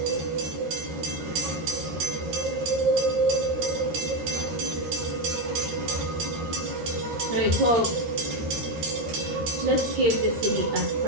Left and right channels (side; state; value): left; late; 13 ms